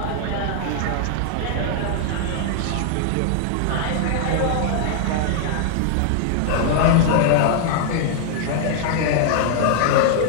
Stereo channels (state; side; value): different; both; correlation -0.01